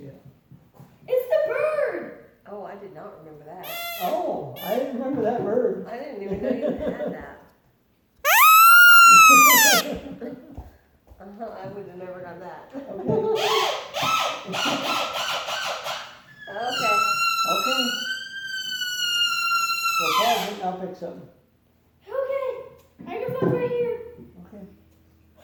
it. It's the bird. Oh, I did not remember that. Oh, I didn't remember that bird. I didn't even know you had that. I would have never done that. Okay. Okay. Okay. So pause it and I'll pick something. Okay. Microphone's right here. Okay.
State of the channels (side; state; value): both; identical; correlation 1.00